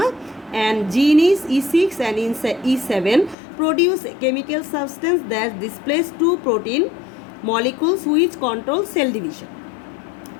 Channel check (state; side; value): drops out; right; at 3.4 s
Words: and gene is E6 and E7 produce a chemical substance that displays two protein molecules which control cell division.